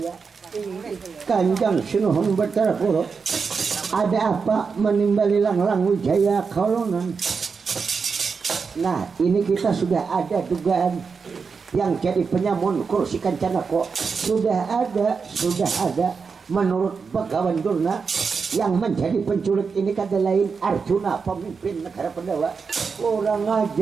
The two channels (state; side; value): quieter; left; 5.3 dB